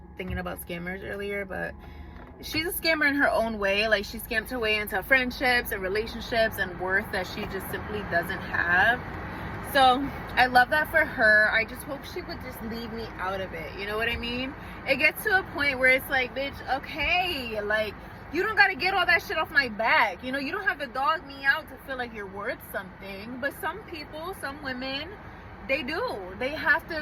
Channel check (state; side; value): identical; both; correlation 1.00